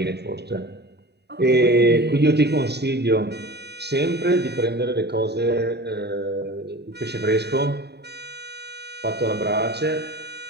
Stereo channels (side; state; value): left; late; 0.48 ms